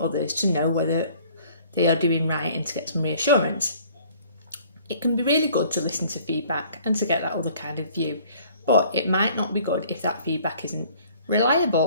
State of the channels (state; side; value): inverted; both; correlation -0.54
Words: others to know whether they are doing right and to get some reassurance. It can be really good to listen to feedback and to get that other kind of view, but it might not be good if that feedback isn't